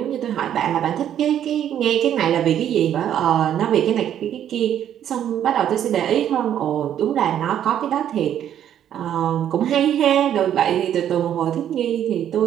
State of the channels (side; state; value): left; quieter; 10.3 dB